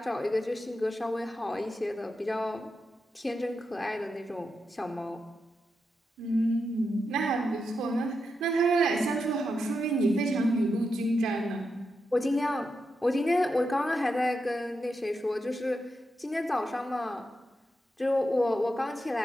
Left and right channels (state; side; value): normal; both; correlation 0.86